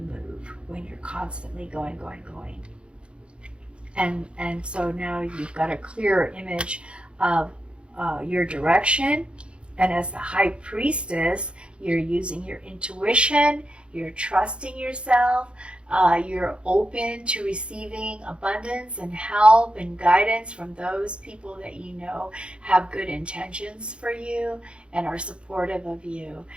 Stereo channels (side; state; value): left; late; 0.057 ms